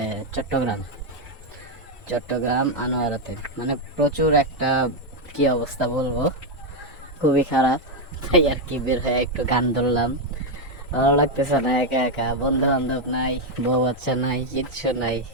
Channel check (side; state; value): both; normal; correlation 0.03